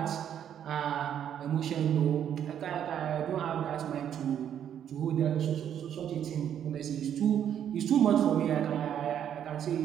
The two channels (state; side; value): quieter; left; 9.5 dB